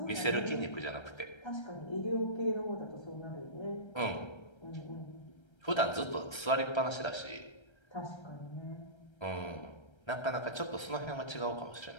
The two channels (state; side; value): late; right; 1.3 ms